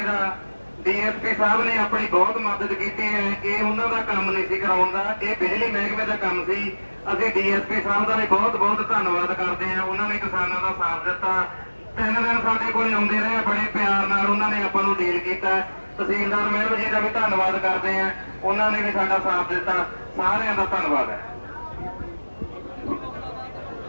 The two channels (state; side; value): inverted; both; correlation -1.00